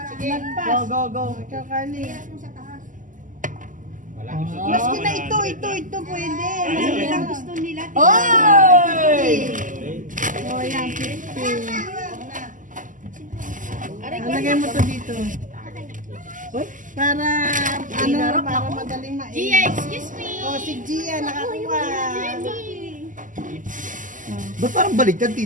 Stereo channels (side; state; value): left; late; 0.38 ms